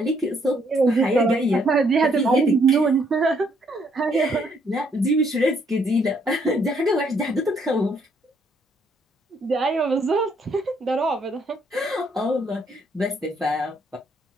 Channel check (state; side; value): normal; both; correlation 0.69